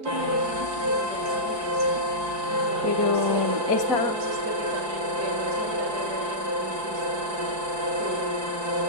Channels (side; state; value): left; late; 4.6 ms